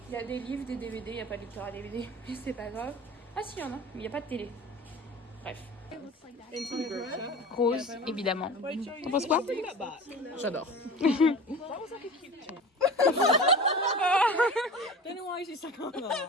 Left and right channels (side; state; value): both; normal; correlation 0.36